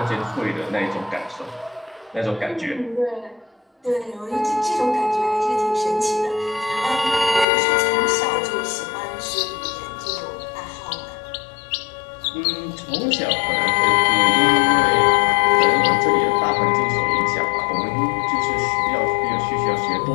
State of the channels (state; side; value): drops out; right; at 7.5 s